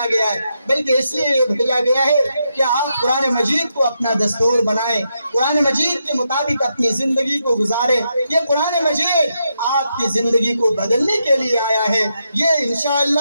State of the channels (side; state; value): both; inverted; correlation -0.83